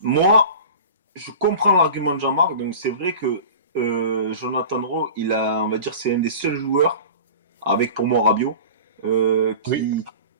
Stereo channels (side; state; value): both; inverted; correlation -0.36